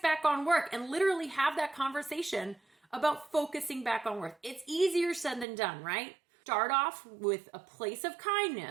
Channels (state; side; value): drops out; left; at 5.5 s